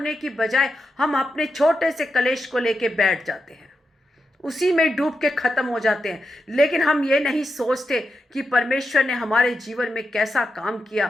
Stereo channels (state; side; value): normal; both; correlation 0.87